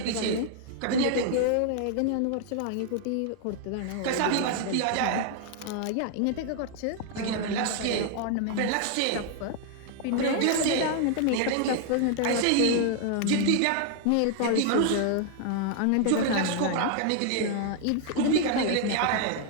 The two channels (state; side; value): different; both; correlation 0.00